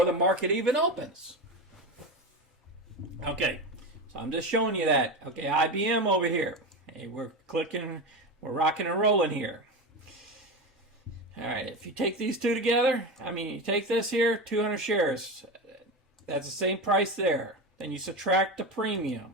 the market even opens. Okay, so I'm just showing you that. Okay, IBM over here. Hey, we're clicking, we're rocking and rolling here. All right, if you take these two together, you take this here, 200 shares. That's the same price there. Then you subtract the premium.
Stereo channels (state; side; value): normal; both; correlation 0.21